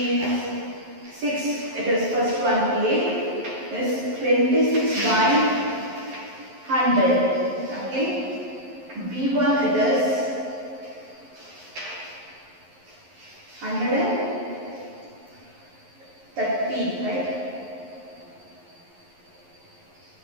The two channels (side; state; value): left; late; 11 ms